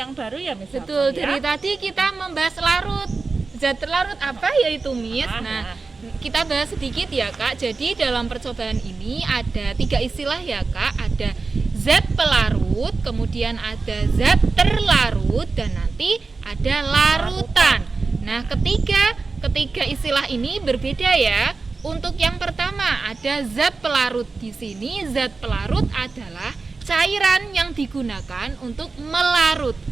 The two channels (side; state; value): left; quieter; 4.1 dB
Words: baru ya Miss Betul, Hapso, ya. dari tadi kita membahas larut. Zat terlarut apa yaitu Miss? Nah, kita bahas sedikit ya Kak. Jadi dalam percobaan ini ada 3 istilah ya Kak. Ada zat pelarut, kemudian ada zat terlarut, dan nanti ada larutan. Nah, ketiga istilah ini berbeda ya. Untuk yang pertama ada zat pelarut. Di sini zat pelarut adalah cairan yang digunakan untuk